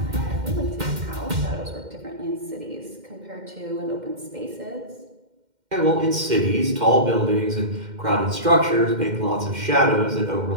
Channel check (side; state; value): left; late; 2.1 ms